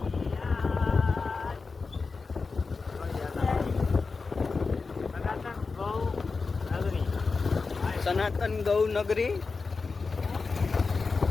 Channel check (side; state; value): right; quieter; 4.4 dB